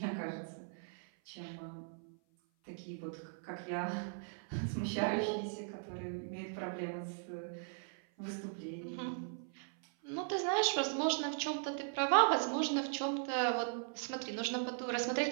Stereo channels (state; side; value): silent; left; 52 dB below the other